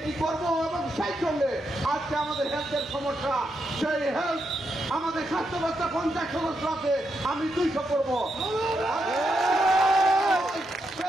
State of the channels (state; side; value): normal; both; correlation 0.82